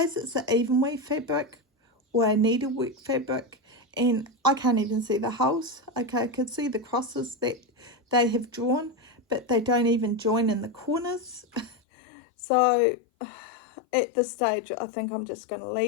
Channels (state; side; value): drops out; right; at 11.8 s